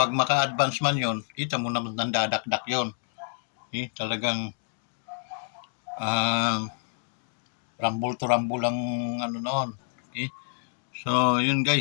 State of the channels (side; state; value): right; silent; 59 dB below the other